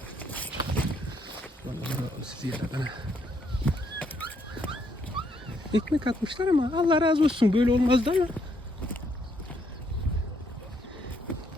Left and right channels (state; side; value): normal; both; correlation 0.73